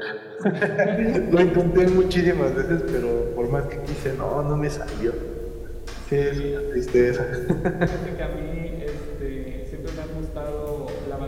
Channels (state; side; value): identical; both; correlation 1.00